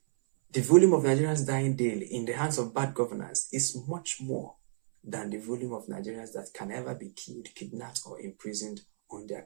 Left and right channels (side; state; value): left; silent; 57 dB below the other